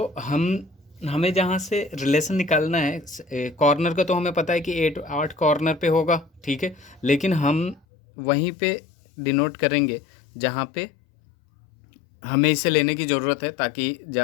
हमें जहाँ से रिलेशन निकालना है कॉर्नर का, तो हमें पता है कि 8 कॉर्नर पे होगा, ठीक है, लेकिन हम वहीं पे डिनोट करेंगे जहाँ पे हमें इसे लेने की ज़रूरत है, ताकि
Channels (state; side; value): drops out; right; at 7.8 s